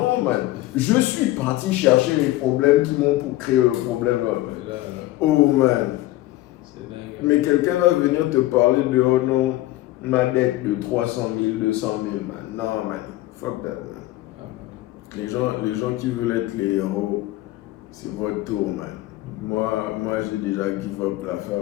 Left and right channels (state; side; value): quieter; right; 16.7 dB